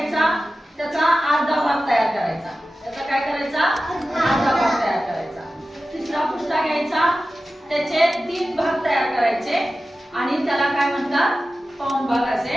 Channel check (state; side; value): normal; both; correlation 0.94